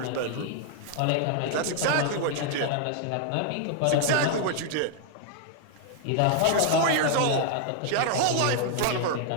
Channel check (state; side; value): different; both; correlation 0.00